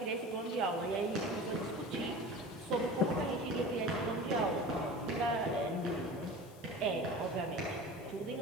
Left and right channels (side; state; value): left; noise; hiss, 23 dB below the sound